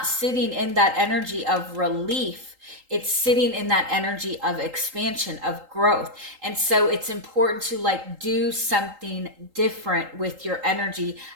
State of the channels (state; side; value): late; left; 3.8 ms